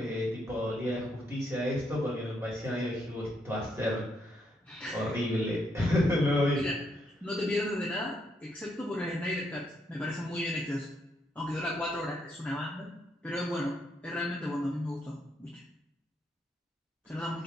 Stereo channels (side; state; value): both; normal; correlation 0.76